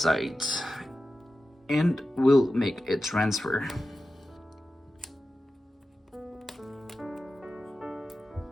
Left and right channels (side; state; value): both; normal; correlation 0.93